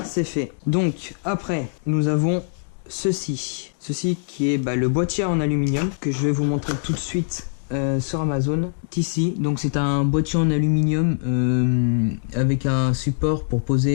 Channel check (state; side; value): silent; right; digital silence